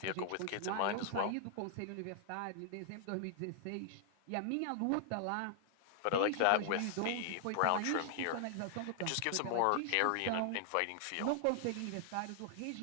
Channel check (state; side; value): different; both; correlation 0.00